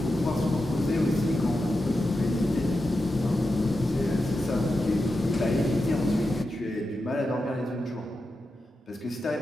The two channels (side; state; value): both; normal; correlation 0.89